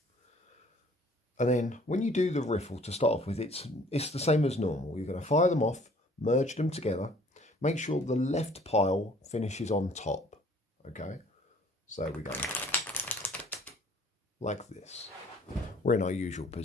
And then when you do the riffle to start off with, it's the same as normal. You're going to fire them off, merge them together, make sure the left pile finishes on top. Okay, so we go like this. We're in our usual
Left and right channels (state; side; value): normal; both; correlation 0.55